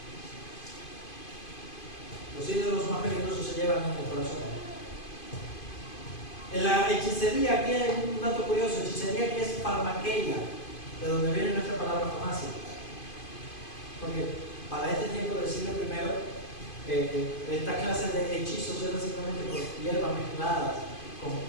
Los ídolos más peligrosos se llevan en el corazón. En la hechicería, aquí hay un dato curioso, hechicería aquí es farmaqueia, de donde viene nuestra palabra farmacia. Porque para este tiempo del siglo I, esta clase de hechizos eran simplemente por hierbas mezcladas con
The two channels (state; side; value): late; right; 2.5 ms